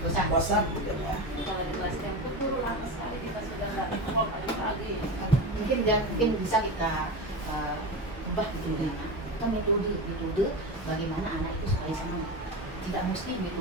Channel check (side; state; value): both; normal; correlation 0.23